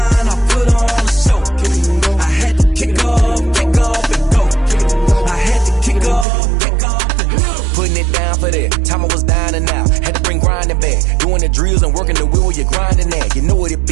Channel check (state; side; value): drops out; left; at 6.2 s